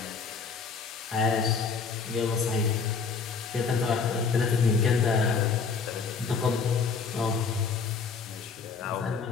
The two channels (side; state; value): right; quieter; 5.2 dB